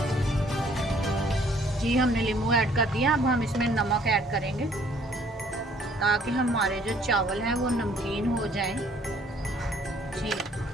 जी, हमने नींबू ऐड कर दिया। अब हम इसमें नमक ऐड करेंगे ताकि हमारे जो चावल हैं वो नमकीन हो जाएं। जी,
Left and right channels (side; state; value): both; normal; correlation 0.60